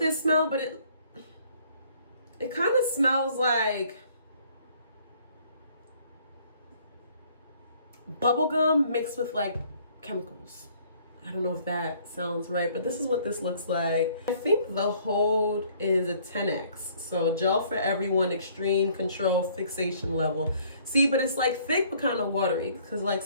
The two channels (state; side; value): inverted; both; correlation -0.60